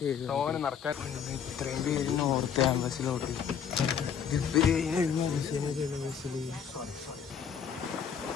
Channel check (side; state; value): right; quieter; 7.7 dB